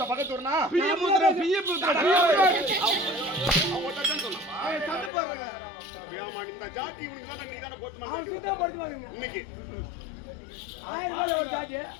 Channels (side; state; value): right; drops out; at 5.1 s